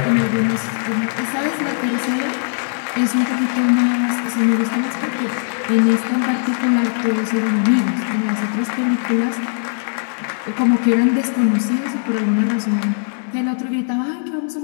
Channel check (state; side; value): silent; right; 66 dB below the other